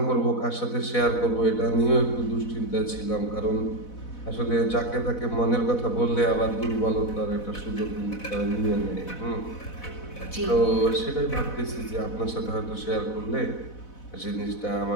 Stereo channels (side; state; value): right; late; 4.1 ms